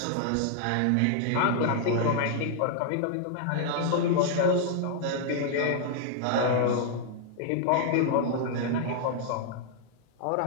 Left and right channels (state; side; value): different; both; correlation 0.00